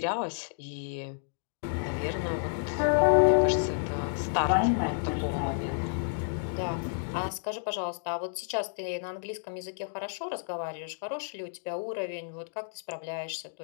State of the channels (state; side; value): silent; right; digital silence